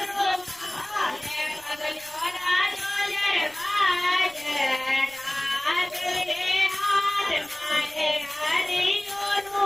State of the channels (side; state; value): right; noise; rumble, 25 dB below the sound